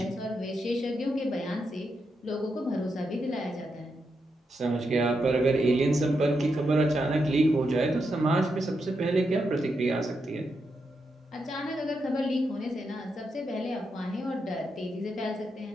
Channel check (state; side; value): normal; both; correlation 0.84